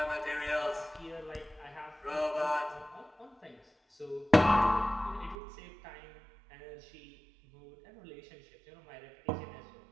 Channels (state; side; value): drops out; left; at 5.4 s